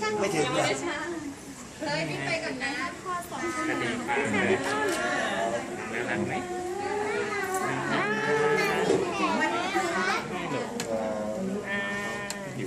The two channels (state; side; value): identical; both; correlation 1.00